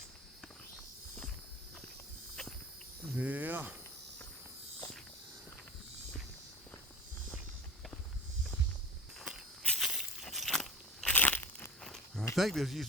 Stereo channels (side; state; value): both; normal; correlation 0.26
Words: Yeah. I think this